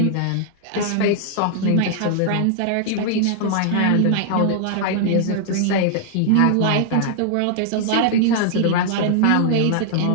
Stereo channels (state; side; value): different; both; correlation -0.01